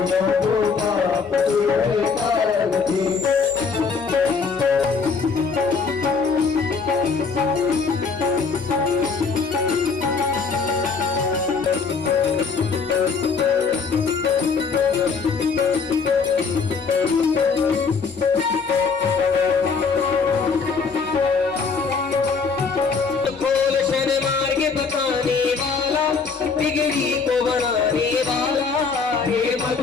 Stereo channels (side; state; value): right; quieter; 5.1 dB